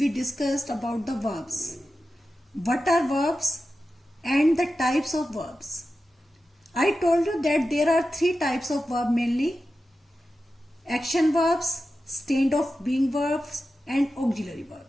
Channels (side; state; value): both; normal; correlation 0.92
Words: discussed about the verbs. What are verbs and the types of verbs? I told you that there are three types of verb mainly: action verbs, state of being verbs, and auxiliary